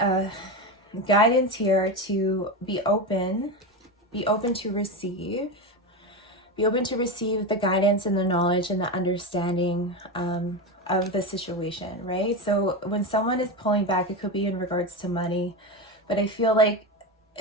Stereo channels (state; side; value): normal; both; correlation 0.18